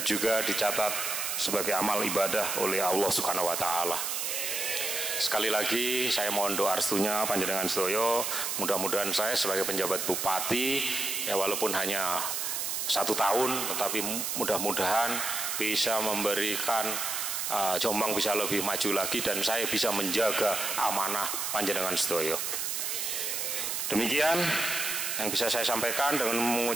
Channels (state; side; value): noise; right; hiss, 1 dB below the sound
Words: juga dicatat sebagai amal ibadah oleh Allah Subhanahu wa Ta'ala. Sekali lagi saya mohon doa restunya panjenengan sedaya, mudah-mudahan saya sebagai penjabat bupati, ya walaupun hanya 1 tahun, tetapi mudah-mudahan bisa memberikan Jombang bisa lebih maju lagi dan saya bisa menjaga amanah panjenengan sedaya. Demikian yang bisa saya sampaikan dengan